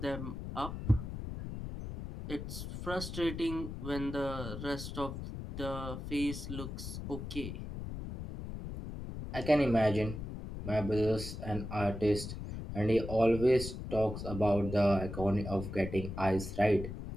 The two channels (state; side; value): noise; left; rumble, 7 dB below the sound